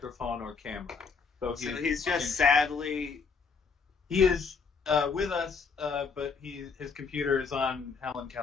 or camera, so he's just sadly. He is with us, but his computer is on Helen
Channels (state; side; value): quieter; right; 5.3 dB